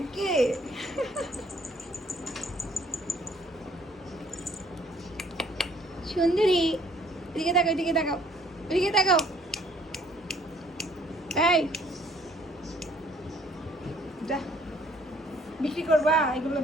সুন্দরী, এদিকে তাকাও, এদিকে তাকাও, এদিকে তাকাও। এই যা, বিক্রি করবা এগুলো,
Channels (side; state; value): both; normal; correlation 0.61